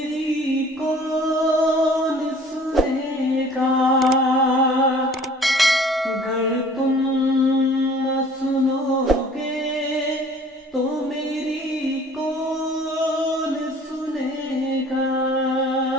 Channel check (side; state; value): both; normal; correlation 0.51